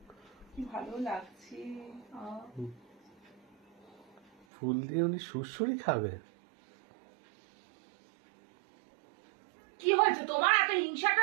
কি ভালো লাগছে। ফুল দিয়ে উনি সুড়সুড়ি খাবে? কি হয়েছে তোমার? এত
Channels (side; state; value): left; drops out; at 4.5 s